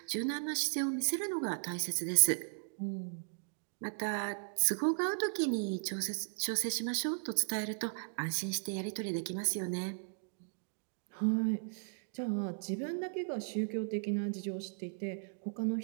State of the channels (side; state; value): left; silent; digital silence